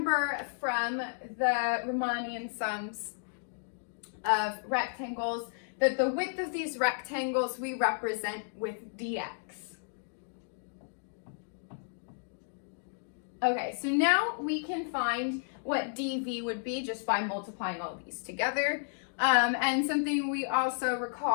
from the Riemannian sums of rectangles that the width of these rectangles we represent with dx. Okay, so now we can find what dv would be just by multiplying all these together. And something we also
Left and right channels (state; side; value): silent; right; digital silence